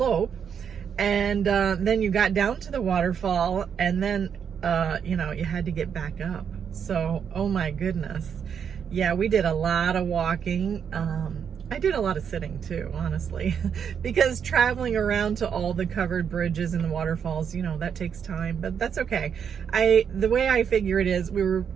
And then you got down to the waterfall, and then, you know, you had to get back up. So, oh my goodness. Yeah, we did a lot of walking. I did a lot of sitting too, honestly, because traveling around to all the covered bridges and the waterfalls, you know, that takes time, but that's okay. The way I figure it is, we were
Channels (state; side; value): quieter; left; 7.5 dB